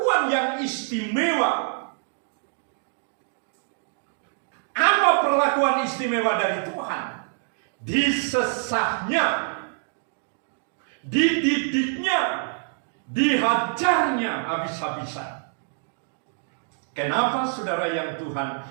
yang istimewa. Apa perlakuan istimewa dari Tuhan? Disesahnya, dididiknya, dihajarnya habis-habisan. Kenapa saudara yang Tuhan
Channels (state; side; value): silent; left; digital silence